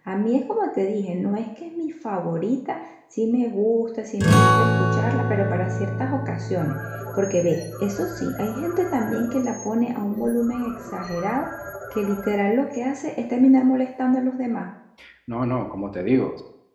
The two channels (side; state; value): both; identical; correlation 1.00